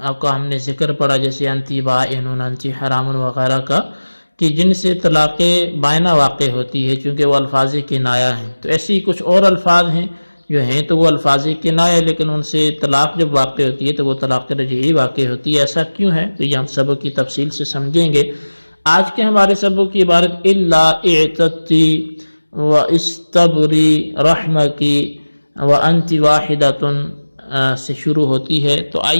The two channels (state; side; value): inverted; both; correlation -1.00